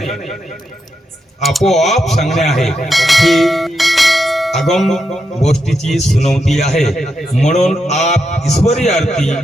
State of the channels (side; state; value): both; normal; correlation 0.84